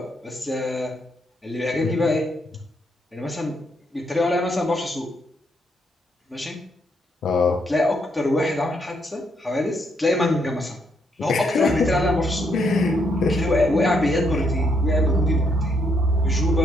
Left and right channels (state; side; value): normal; both; correlation 0.75